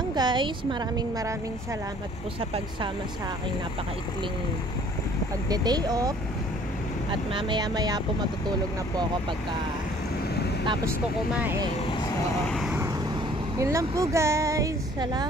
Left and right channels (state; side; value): normal; both; correlation 0.55